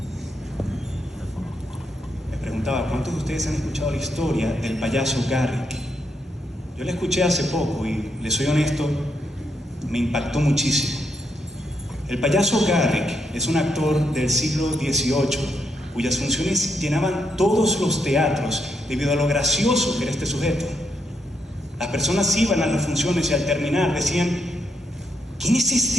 Me preguntaba, ¿cuántos de ustedes han escuchado la historia del payaso Garrick? Yo la escuché hace poco y, les soy honesto, me impactó muchísimo. El payaso Garrick es un actor del siglo XVIII, cuyas funciones llenaban todos los teatros debido a lo gracioso que era este sujeto. Las personas iban a las funciones y al terminar decían: ¿quién es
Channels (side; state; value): both; normal; correlation 0.79